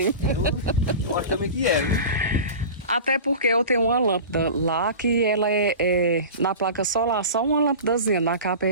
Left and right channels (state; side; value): inverted; both; correlation -0.33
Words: Eu acho também que é, né? Até porque eu tenho uma lâmpada lá que ela é na placa solar, só uma lâmpadazinha na